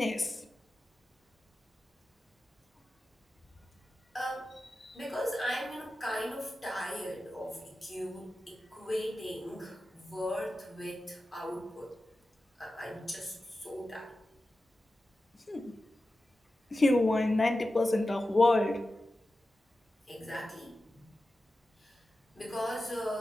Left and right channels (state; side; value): normal; both; correlation 0.93